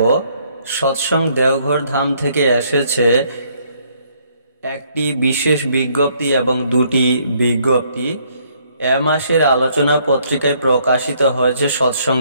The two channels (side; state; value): both; inverted; correlation -0.67